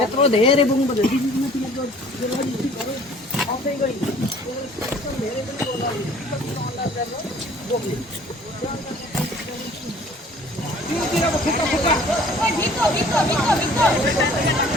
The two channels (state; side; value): normal; both; correlation 0.53